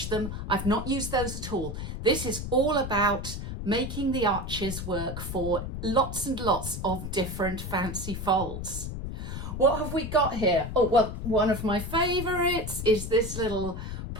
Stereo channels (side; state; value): left; noise; rumble, 6 dB below the sound